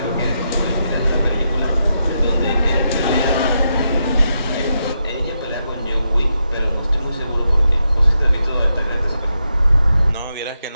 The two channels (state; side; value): inverted; both; correlation -0.84